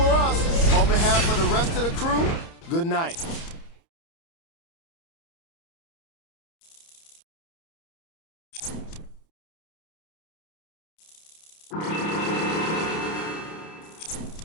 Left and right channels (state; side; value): late; right; 30 ms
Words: us. On behalf of the rest of the crew, good night.